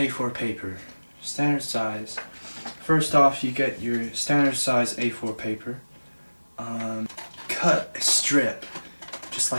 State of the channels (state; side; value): inverted; both; correlation -1.00